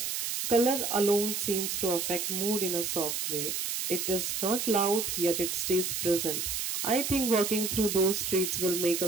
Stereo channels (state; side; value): noise; right; hiss, 2 dB below the sound